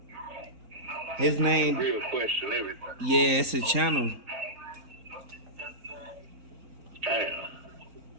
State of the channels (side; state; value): left; late; 4.4 ms